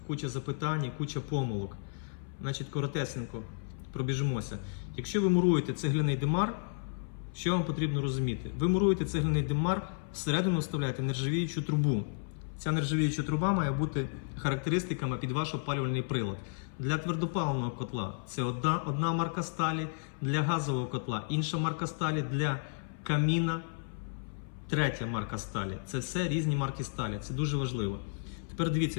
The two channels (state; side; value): silent; right; 56 dB below the other